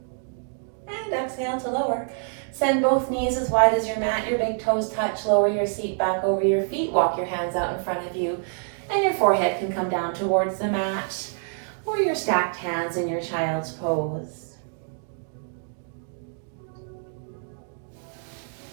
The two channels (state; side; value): silent; left; 61 dB below the other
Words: And exhale to lower. Send both knees as wide as your mat. Your big toes touch. Lower your seat back over your feet. Walk your hands out in front of you. And your forehead can come down towards the mat, or your stacked hands in your child's pose.